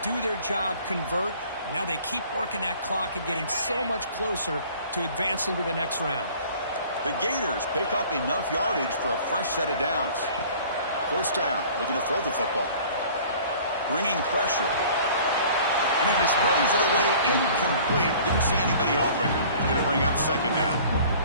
do their job, convert. Now they keep working that clock and getting so much closer to advancing to the next round. The Gators pick up enough yardage for a fresh set of downs. First down, looking to throw the football. Bringing pressure. And he displays it away incomplete. Didn't see anybody open. Going to bring up second down.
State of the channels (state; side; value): inverted; both; correlation -0.49